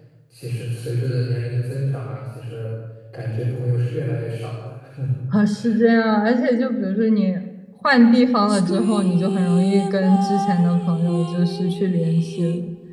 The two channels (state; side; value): identical; both; correlation 1.00